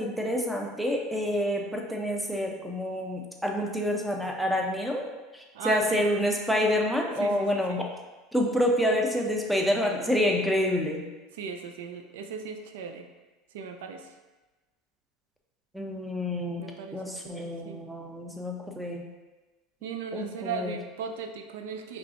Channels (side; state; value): both; normal; correlation 0.60